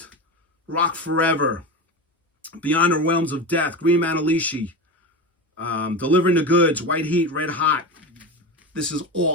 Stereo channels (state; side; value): normal; both; correlation 0.24